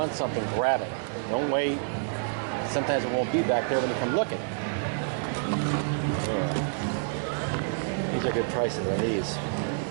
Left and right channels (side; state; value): left; silent; 59 dB below the other